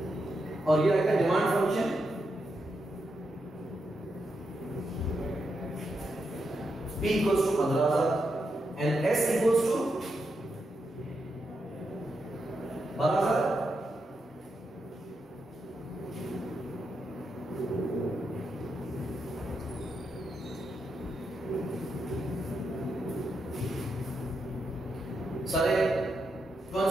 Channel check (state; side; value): normal; both; correlation 0.84